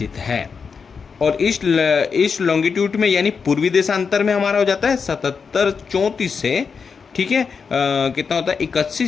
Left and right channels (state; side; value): quieter; right; 5.7 dB